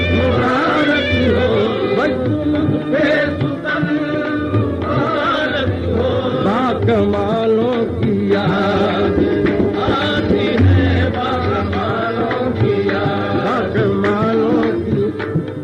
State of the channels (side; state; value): both; identical; correlation 1.00